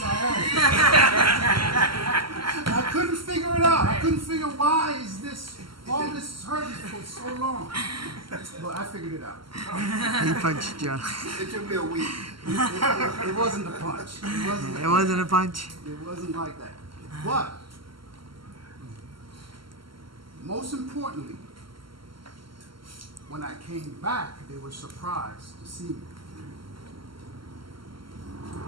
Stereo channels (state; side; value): late; left; 0.74 ms